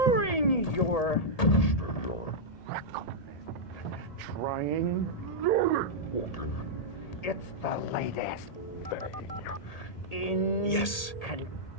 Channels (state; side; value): late; right; 1.8 ms